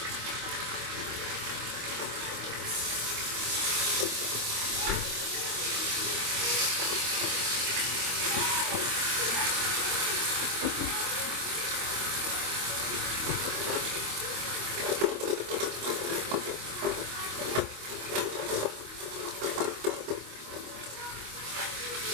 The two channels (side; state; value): left; late; 25 ms